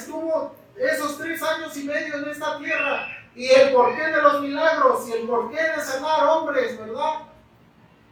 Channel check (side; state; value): both; identical; correlation 1.00